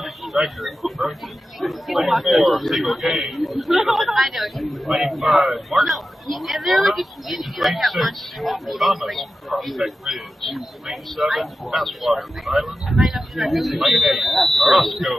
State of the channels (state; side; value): normal; both; correlation 0.93